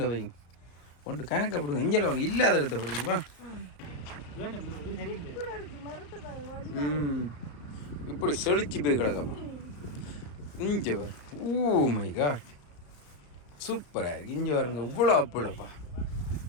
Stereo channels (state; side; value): late; right; 34 ms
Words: வைங்க, ஒன்று கணக்கை போடுங்க. இங்கே வாங்க, இல்லாத இடத்த போடுங்கப்பா. இப்படி செழிச்சு போய் கிடக்கப்பா. இங்கே வரும். ஓ மை காட், சூப்பராக இருக்கு. இங்கே வருங்க, இவ்வளோ அப்புளப்பா.